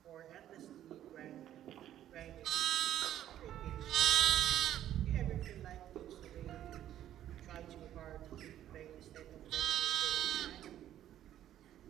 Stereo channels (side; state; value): left; quieter; 11.8 dB